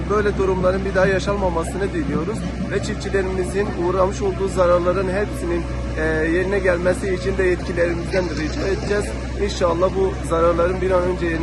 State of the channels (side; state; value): both; identical; correlation 1.00